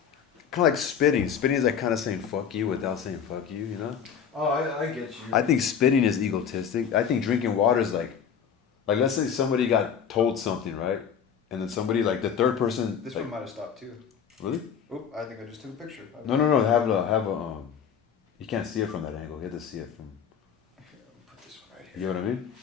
kind of like spitting. Spitting is like kind of saying fuck you without saying fuck you, you know? Oh, I get you. I think spitting is egotistic. I think drinking water is like let's say somebody got told something, right? And then somebody, like the third person. This like, one might have stopped too. Really? Oh, I think I just took a picture. No. Have a you can't see it from that angle. You have to see it from. Okay, I'll put this one right here. You know what I mean?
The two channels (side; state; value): right; quieter; 7.6 dB